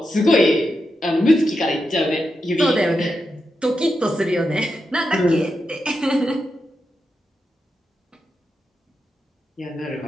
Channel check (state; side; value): normal; both; correlation 0.87